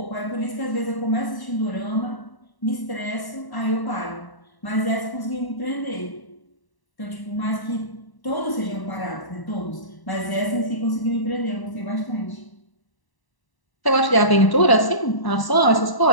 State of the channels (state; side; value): late; right; 1.0 ms